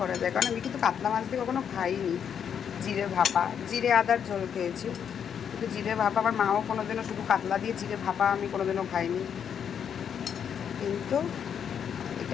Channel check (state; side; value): quieter; right; 8.0 dB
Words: যায়, কারণ আমি কিন্তু কাতলা মাছ দিয়ে কখনো খাইনি। জিরে ভাপা, জিরে আদার ঝোল খেয়েছি, কিন্তু জিরে ভাপা আমার মাও কোনোদিনও, শুধু কাতলা দিয়ে জিরে ভাপা আমি কোনোদিনও খাইনি, কিন্তু